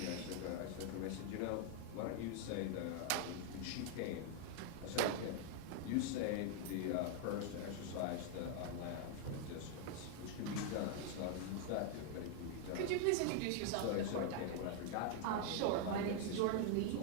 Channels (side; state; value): both; different; correlation 0.00